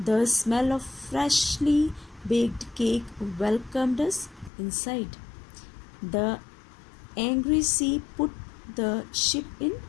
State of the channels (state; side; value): drops out; right; at 4.5 s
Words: smell of freshly baked cake welcomed us inside. The angry sea put the ship in